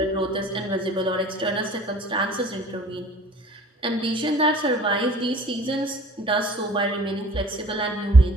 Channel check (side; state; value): both; normal; correlation 0.48